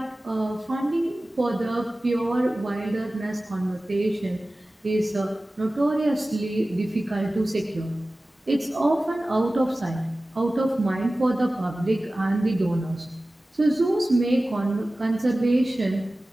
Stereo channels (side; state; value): both; normal; correlation 0.97